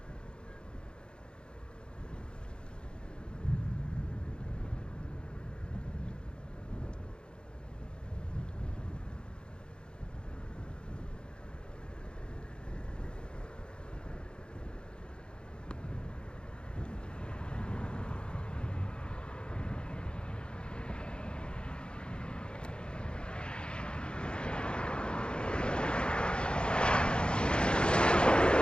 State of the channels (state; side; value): late; right; 0.052 ms